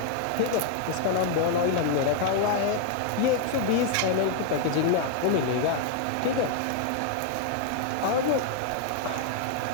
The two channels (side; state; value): both; different; correlation 0.00